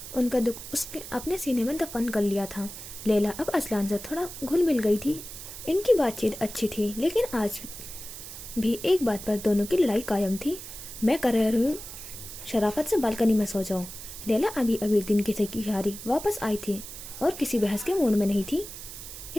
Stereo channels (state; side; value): noise; right; hiss, 12 dB below the sound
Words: उनका दुख उसके अपने सीने में दफन कर लिया था। लैला अब अजलान से थोड़ा घुल मिल गई थी। इनकी बातचीत अच्छी थी, लेकिन आज भी एक बात पर दोनों की लड़ाई कायम थी। मैं कर रही हूँ शराफत से बालकनी में सो जाऊँ। लैला अभी अभी दिन की थकी हारी वापस आई थी, और किसी बहस के मूड में नहीं थी।